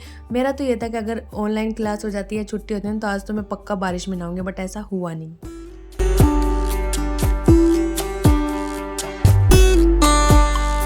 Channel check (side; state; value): both; identical; correlation 1.00